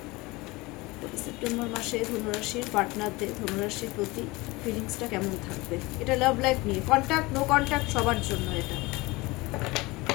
সেপ্টেম্বর মাসে ধনুরাশির পার্টনারদের ধনুরাশির প্রতি ফিলিংসটা কেমন থাকবে, এটা লাভ লাইফ নিয়ে, কন্ট্যাক্ট নো কন্ট্যাক্ট সবার জন্য এটা।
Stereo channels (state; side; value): quieter; right; 22.6 dB